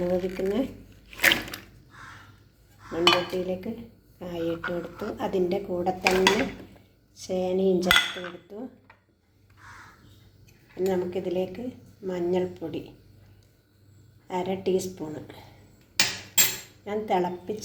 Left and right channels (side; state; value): both; identical; correlation 1.00